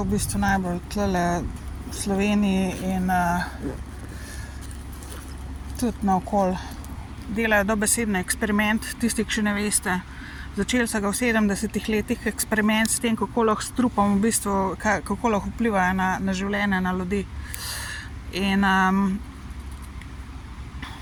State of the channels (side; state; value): both; identical; correlation 1.00